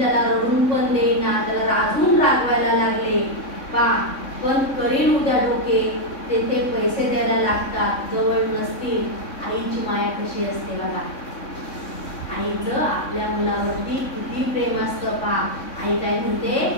रडून पण देईना, त्याला रागून रागवायला लागले. पण करील उद्या डोके, तेथे पैसे द्यायला लागतात, जवळ नसतील. आईची माया कशी असते बघा, आईचं आपल्या मुलावरती किती प्रेम असतं पहा. आई काय म्हणते,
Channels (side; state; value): right; late; 3.6 ms